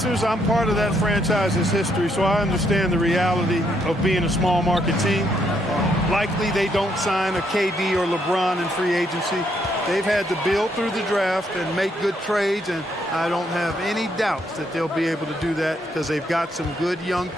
I'm part of that franchise's history, so I understand the reality of being a small market team. Likely they don't sign a KD or LeBron in free agency. They've had to build through the draft and make good trades, and I don't have any doubts that they'll be able to do that because they've got some good young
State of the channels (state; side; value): normal; both; correlation 0.74